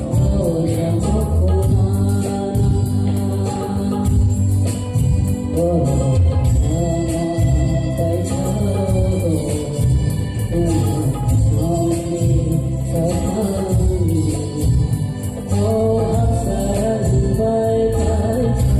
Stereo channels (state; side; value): identical; both; correlation 1.00